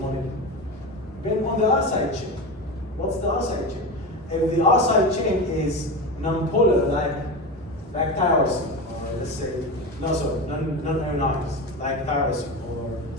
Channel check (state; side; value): normal; both; correlation 0.23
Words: Depend on the R side chain. What's the R side chain? If the R side chain is non-polar, like tyrosine, or let's say, non-ionized, like tyrosine, or